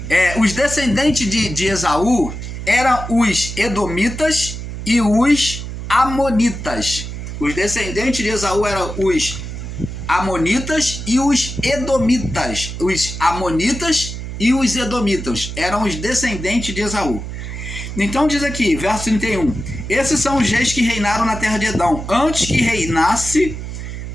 os descendentes de Esaú eram os edomitas e os amonitas. Os descendentes de Esaú eram os amonitas e os edomitas. Os amonitas e os edomitas eram os descendentes de Esaú. Então diz aqui, verso 31, esses são os reis que reinaram na terra de Edom. Antes que reinasse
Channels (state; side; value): noise; right; hum, 8 dB below the sound